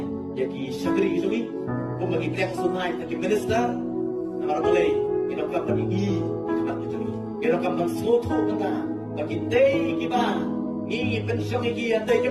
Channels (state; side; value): identical; both; correlation 1.00